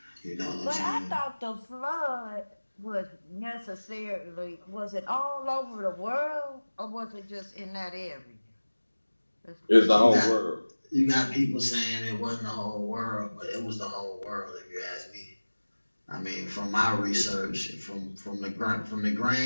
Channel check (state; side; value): inverted; both; correlation -1.00